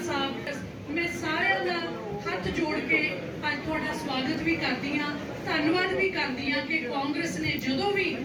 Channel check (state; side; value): identical; both; correlation 1.00